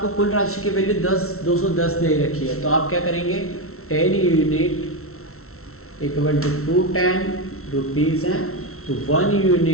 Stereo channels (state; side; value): late; right; 0.63 ms